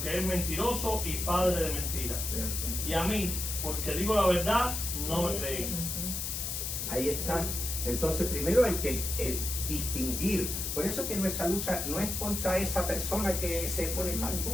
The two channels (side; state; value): left; noise; hiss, 3 dB below the sound